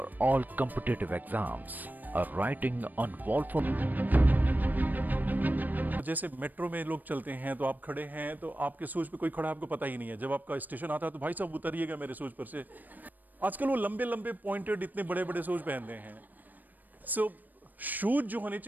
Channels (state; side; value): late; left; 0.086 ms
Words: all competitive exams. A writing on wall for. जैसे मेट्रो में लोग चलते हैं तो आप खड़े हैं तो आपके शूज पे कोई खड़ा आपको पता ही नहीं है। जब आपका स्टेशन आता है तो भाई साहब उतरिएगा मेरे शूज पर से। आजकल वो लंबे लंबे पॉइंटेड इतने बड़े बड़े शूज पहनते हैं। सो शूज जो होने